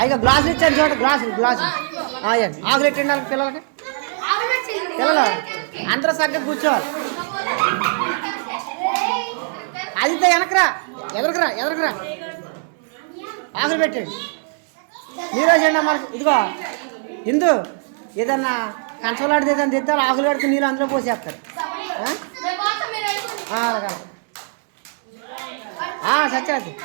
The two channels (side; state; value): left; silent; 65 dB below the other